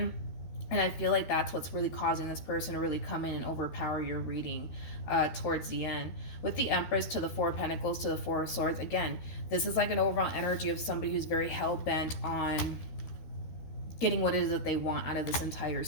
And I feel like that's what's really causing this person to really come in and overpower your reading towards the end. With the Empress to the Four of Pentacles to the Four of Swords, again, this is like an overall energy of somebody who's very hell-bent on getting what it is that they want out of this entire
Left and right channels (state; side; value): late; right; 12 ms